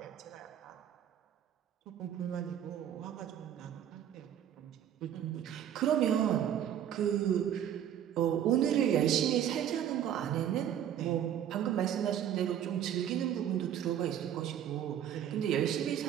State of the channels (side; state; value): left; quieter; 10.1 dB